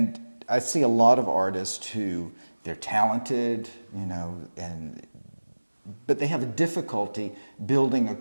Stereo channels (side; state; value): both; inverted; correlation -1.00